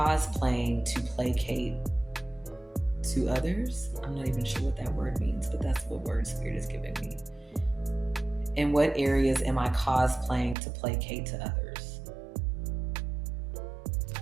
to placate to others? I'm not even sure what that word means, but that's what word spirit is giving me. In what areas am I cosplaying to placate to others?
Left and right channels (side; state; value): left; drops out; at 10.6 s